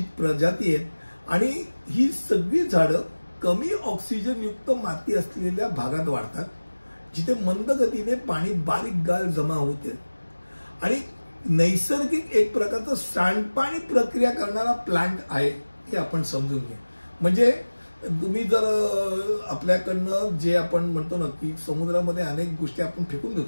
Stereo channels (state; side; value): inverted; both; correlation -1.00